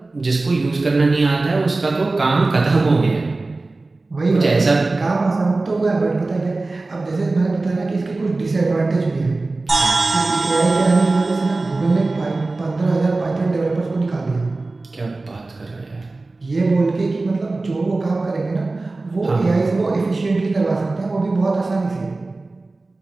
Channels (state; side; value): quieter; left; 3.3 dB